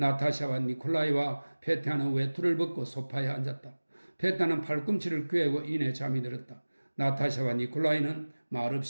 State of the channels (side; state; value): both; inverted; correlation -1.00